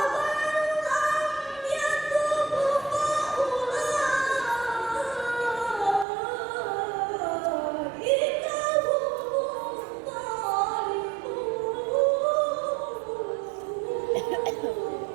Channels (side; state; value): left; drops out; at 6.1 s